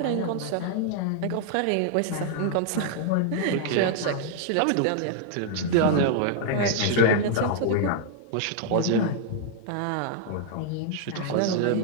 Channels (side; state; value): both; different; correlation 0.00